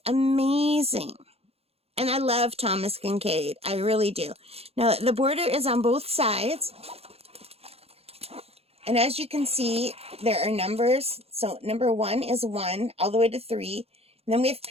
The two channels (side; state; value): left; late; 0.29 ms